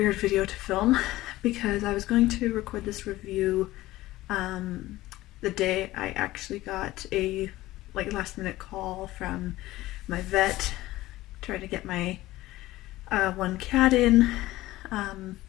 video to film because I was going to record this review the day I actually got a last minute call from my vet trying to get my one cat in,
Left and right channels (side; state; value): right; quieter; 17.1 dB